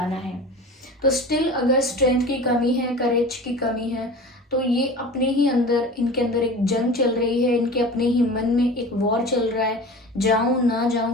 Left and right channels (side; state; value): both; normal; correlation 0.36